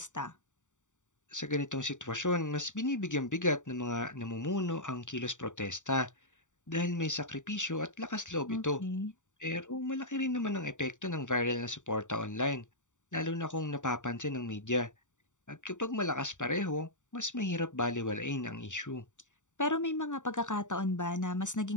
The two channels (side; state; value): right; late; 0.86 ms